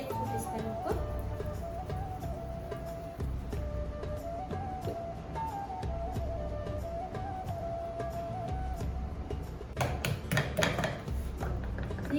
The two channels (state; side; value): identical; both; correlation 1.00